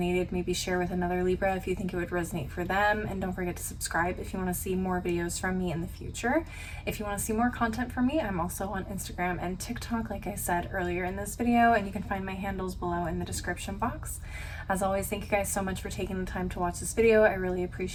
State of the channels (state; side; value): identical; both; correlation 1.00